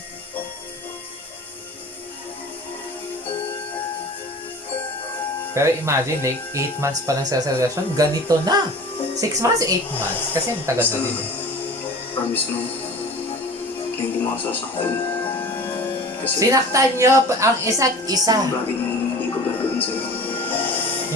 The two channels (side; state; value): both; normal; correlation 0.40